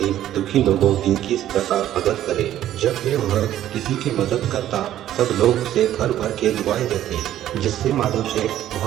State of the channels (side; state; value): left; quieter; 12.3 dB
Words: दुखी लोगों की किस प्रकार मदद करे। जब भी वह किसी की मदद करता सब लोग उसे भर भर के दुआएं देते, जिससे माधव शेठ